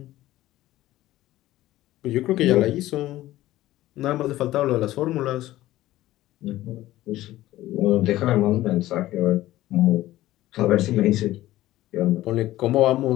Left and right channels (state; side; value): quieter; right; 15.6 dB